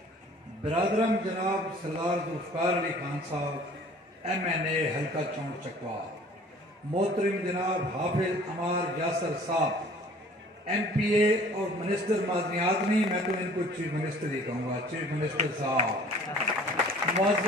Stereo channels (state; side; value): normal; both; correlation 0.51